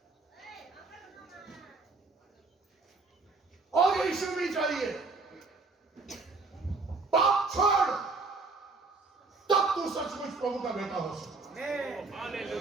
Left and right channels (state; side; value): quieter; left; 3.9 dB